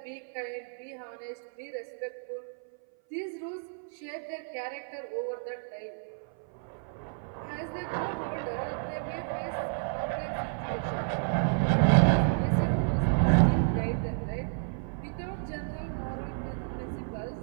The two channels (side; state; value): left; silent; 57 dB below the other